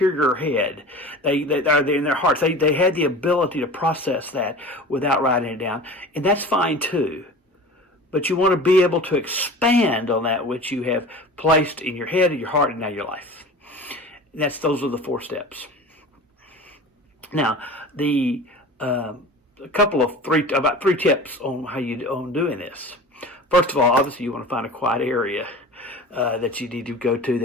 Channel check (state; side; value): normal; both; correlation 0.37